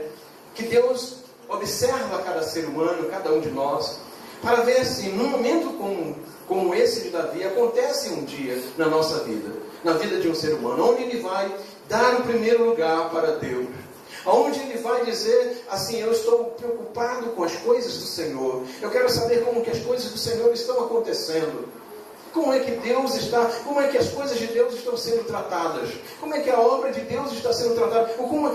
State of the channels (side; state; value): both; identical; correlation 1.00